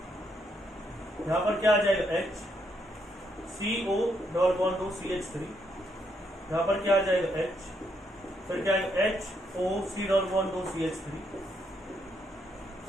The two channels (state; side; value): normal; both; correlation 0.75